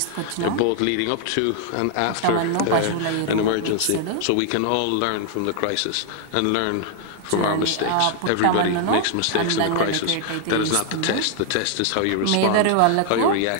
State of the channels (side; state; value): both; different; correlation 0.00